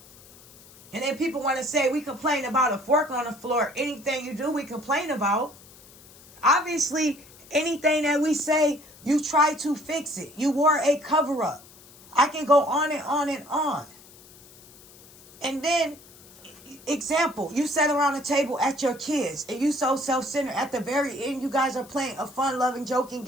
And then people want to say we complain about a fork on the floor. Anything you do, we complain about. Obviously, anything that we say, you try to fix it. You wore a cover-up. I can go on and on and on. And then, example, you sat around the table at your kids and you so self-centered. At the very end, you guys are playing a fun-loving, joking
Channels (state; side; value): noise; left; hiss, 23 dB below the sound